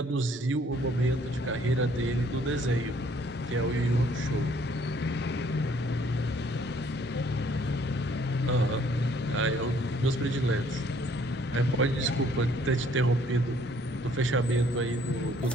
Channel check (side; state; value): both; normal; correlation 0.62